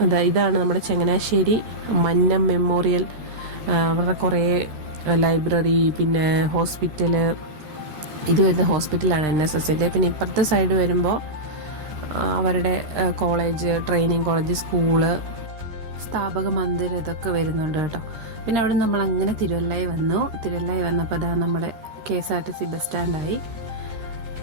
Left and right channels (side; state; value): left; late; 14 ms